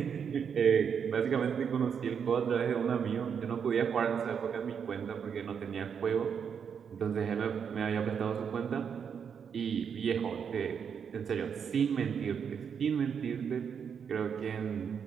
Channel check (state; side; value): quieter; left; 7.1 dB